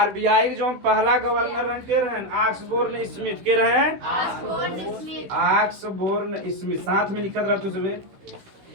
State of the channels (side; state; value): left; late; 16 ms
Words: जो पहला गवर्नर के रहे ऑक्सबोर्न स्मिथ के रहे ऑक्सबोर्न स्मिथ साथ में लिखत रहते सुबह